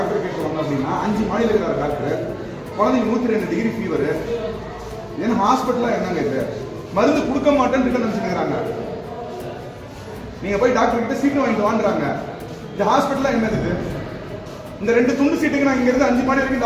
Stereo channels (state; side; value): identical; both; correlation 1.00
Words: கேட்குவாங்க அப்படின்னா 5 மாடியில் இருக்கிற டாக்டர் குழந்தைங்க 102 டிகிரி ஃபீவர். ஏன்னா ஹாஸ்பிட்டலா என்னங்க இது? மருந்து கொடுக்க மாட்டேன்னு நினைச்சுக்கிறாங்க. நீங்க போய் டாக்டர் கிட்ட சீட்டு வாங்கிட்டு வாங்குறாங்க. இந்த ஹாஸ்பிட்டலா என்னது இது? இந்த 2 துண்டு சீட்டுக்கு நான் இங்க இருந்து 5 மாடி வரைக்கும்